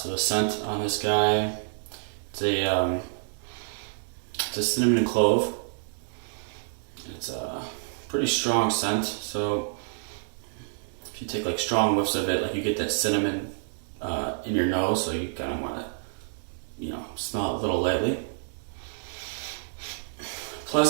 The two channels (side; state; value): left; silent; digital silence